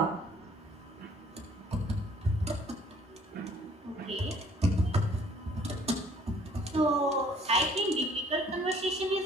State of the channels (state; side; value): normal; both; correlation 0.58